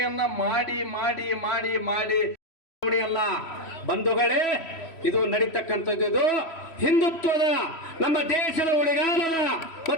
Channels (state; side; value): late; right; 3.1 ms